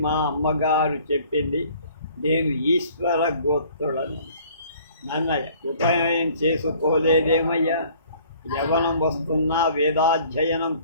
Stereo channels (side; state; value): both; inverted; correlation -0.54